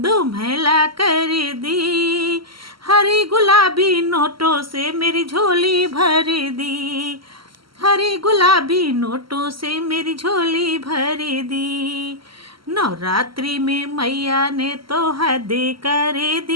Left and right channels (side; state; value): left; late; 0.74 ms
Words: कर दी। हरी गुलाबी नोटों से मेरी झोली भर दी, हरी गुलाबी नोटों से मेरी झोली भर दी। नवरात्रि में मैया ने तो हदें कर